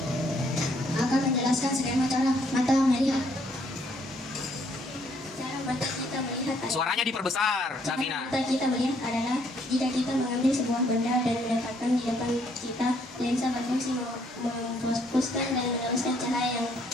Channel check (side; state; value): both; normal; correlation 0.68